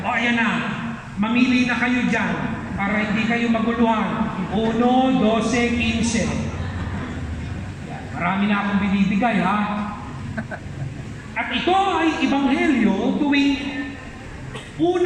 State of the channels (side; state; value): both; identical; correlation 1.00